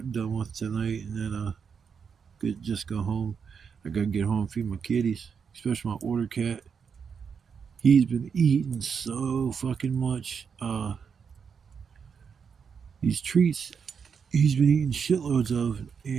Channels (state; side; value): quieter; left; 6.4 dB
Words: done with tonight and then just go home. I gotta get home and feed my kitties, especially my order cat. He's been eating so fucking much. These treats he's been eating shitloads of,